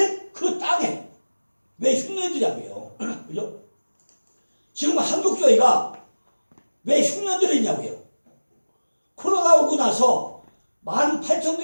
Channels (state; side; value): inverted; both; correlation -1.00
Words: 그 땅에 왜 흉년이 들냐고요. 그죠? 지금 한국교회가 왜 흉년들이 있냐고요. 코로나 오고 나서